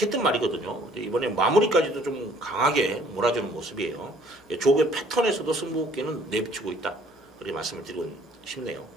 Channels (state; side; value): normal; both; correlation 0.58